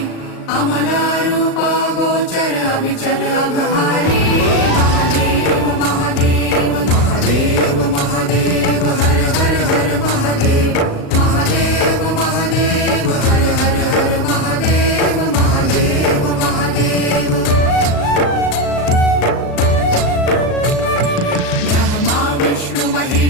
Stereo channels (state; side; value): late; right; 36 ms